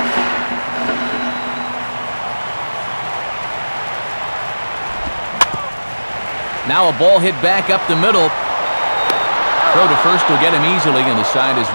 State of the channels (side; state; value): both; inverted; correlation -1.00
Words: Now a ball hit back up the middle. Throw to first will get him easily, and the side is